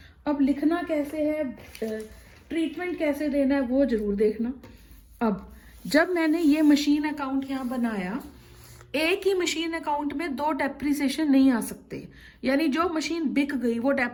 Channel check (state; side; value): identical; both; correlation 1.00